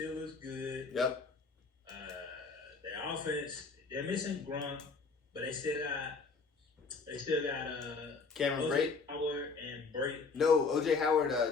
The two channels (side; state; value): right; quieter; 4.4 dB